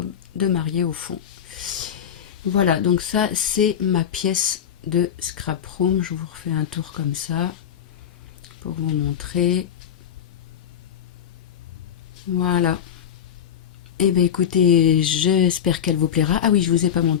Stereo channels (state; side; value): quieter; right; 8.9 dB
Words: de mariée au fond. Voilà, donc ça, c'est ma pièce de scrap room. Je vous refais un tour comme ça pour vous montrer. Voilà. Eh bien, écoutez, j'espère qu'elle vous plaira. Ah oui, je vous ai pas